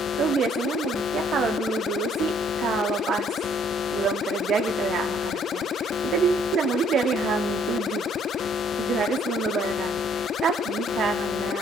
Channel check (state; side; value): normal; both; correlation 0.63